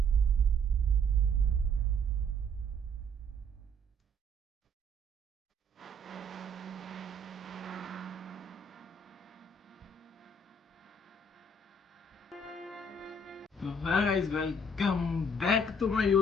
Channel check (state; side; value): normal; both; correlation 0.62